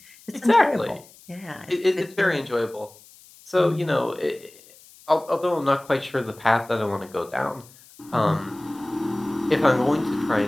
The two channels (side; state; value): left; noise; hiss, 24 dB below the sound